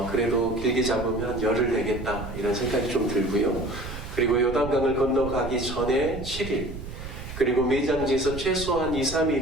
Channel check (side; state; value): right; noise; rumble, 10 dB below the sound